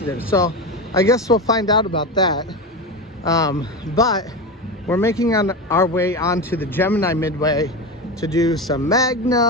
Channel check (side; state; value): both; normal; correlation 0.20